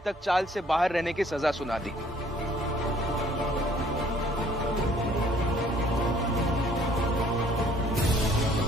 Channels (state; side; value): normal; both; correlation 0.59